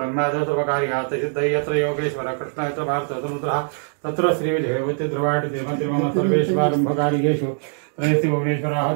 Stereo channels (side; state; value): left; silent; 58 dB below the other